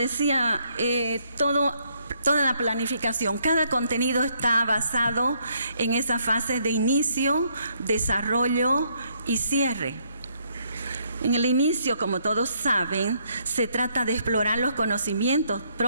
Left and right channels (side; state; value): both; inverted; correlation -0.71